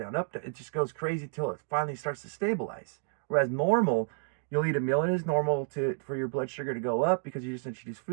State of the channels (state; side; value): silent; left; digital silence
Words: up. It just goes crazy till it finally starts to stabilize. Whereas normal, you'll eat a meal and it's normal for your blood sugar to go up because you just introduce